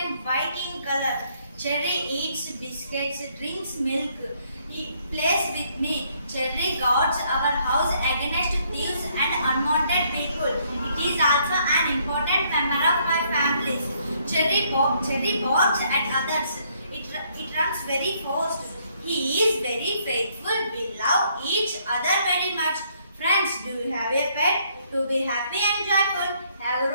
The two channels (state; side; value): inverted; both; correlation -0.68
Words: white in color. Cherry eats biscuits, drinks milk. He plays with me. Cherry guards our house against thieves and unwanted people. It is also an important member of my family. Cherry barks at others. It runs very fast. He is very faithful. We love each other very much. Friends, do you have a pet? To be happy and joyful, have